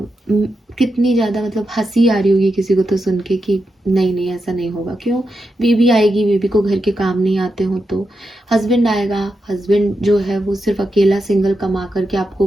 ज़्यादा मतलब हंसी आ रही होगी किसी को तो सुन के कि नहीं नहीं ऐसा नहीं होगा। क्यों? बीवी आएगी, बीवी को घर के काम नहीं आते हो तो हस्बैंड आएगा, हस्बैंड जो है वो सिर्फ अकेला सिंगल कमा करके आपको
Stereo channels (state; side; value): normal; both; correlation 0.87